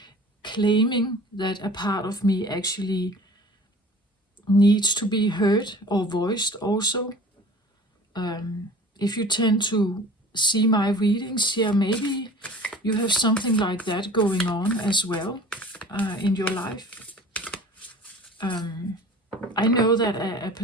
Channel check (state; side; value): normal; both; correlation 0.44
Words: claiming that a part of me actually needs to be heard or voiced also. If you tend to see my readings here, maybe you have something like that going on as well in your life. I know that a